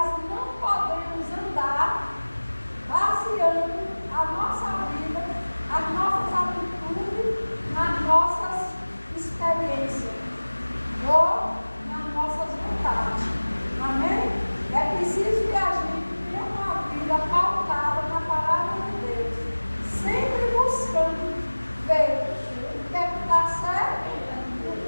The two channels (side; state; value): both; inverted; correlation -1.00